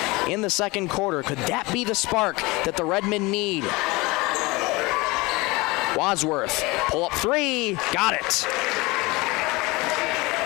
in the second quarter. Could that be the spark that the Redmen need? Wadsworth, pull up 3, got it.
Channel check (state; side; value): quieter; right; 23.3 dB